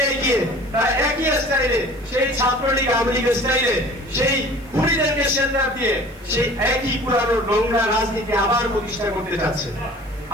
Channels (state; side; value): noise; right; hiss, 27 dB below the sound